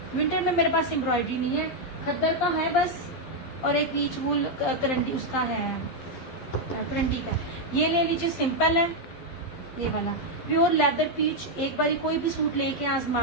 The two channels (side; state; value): right; late; 12 ms